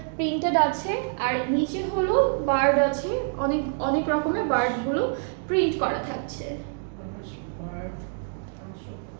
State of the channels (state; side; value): silent; left; digital silence